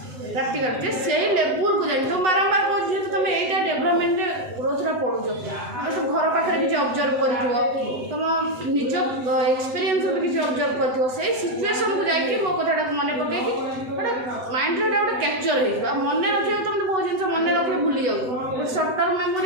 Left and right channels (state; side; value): late; left; 8.1 ms